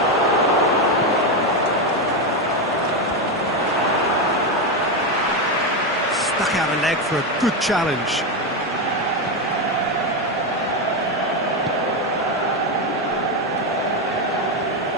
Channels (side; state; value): both; normal; correlation 0.10